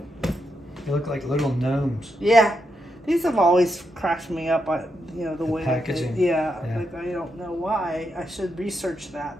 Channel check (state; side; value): normal; both; correlation 0.83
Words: They look like little gnomes. Yeah, these have always cracked me up. You know, the way packaging. Yeah, like I don't know why. I should research that,